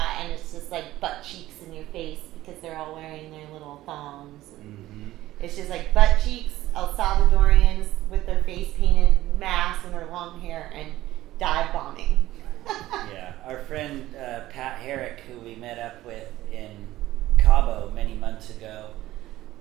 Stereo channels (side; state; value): left; quieter; 15.5 dB